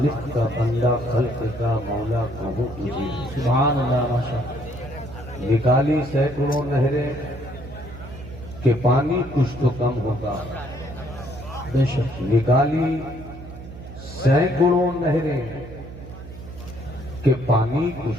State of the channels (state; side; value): noise; right; hum, 14 dB below the sound